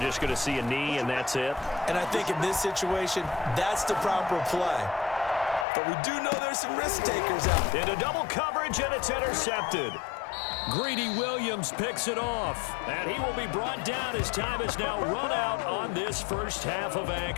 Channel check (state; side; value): drops out; right; at 5.7 s